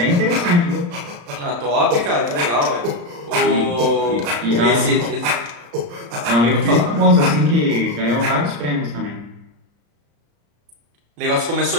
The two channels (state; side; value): late; left; 34 ms